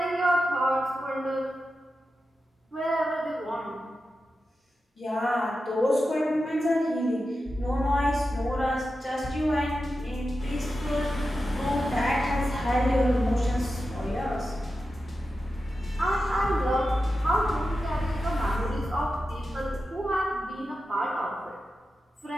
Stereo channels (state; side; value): normal; both; correlation 0.91